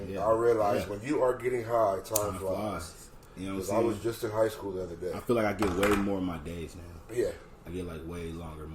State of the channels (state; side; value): identical; both; correlation 1.00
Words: Yeah. I realized Yeah. when you are getting high, time flies. You know what I'm Because saying? I was just in high school the other day. I feel like I get way more of my days now. Yeah. I get like way longer,